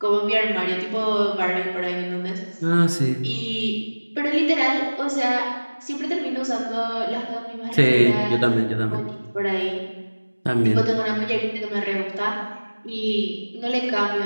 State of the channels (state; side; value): inverted; both; correlation -1.00